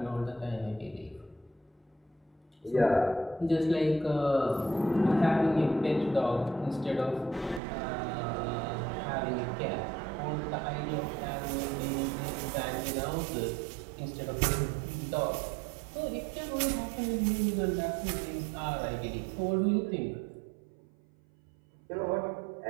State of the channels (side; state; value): left; drops out; at 7.6 s